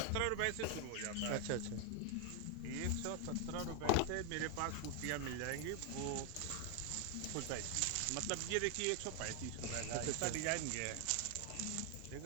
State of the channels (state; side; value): different; both; correlation 0.01